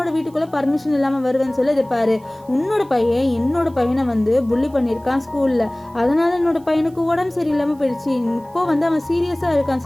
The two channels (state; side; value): noise; right; hiss, 30 dB below the sound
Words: வீட்டுக்குள்ளே பர்மிஷன் இல்லாமல் வருவேன்னு சொல்லி இது பாரு, உன்னோட பையன் என்னோட பையனை வந்து புள்ளி பண்ணியிருக்கான் ஸ்கூலில், அதனால என்னோட பையனுக்கு உடம்பு சரியில்லாமல் போயிடுச்சு, இப்போ வந்து அவன் சீரியஸாக